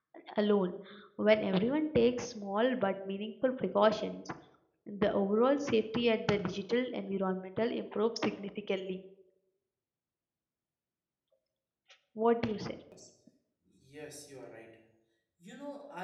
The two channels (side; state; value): both; identical; correlation 1.00